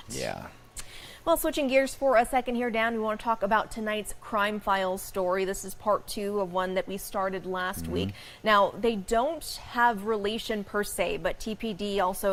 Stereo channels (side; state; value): both; identical; correlation 1.00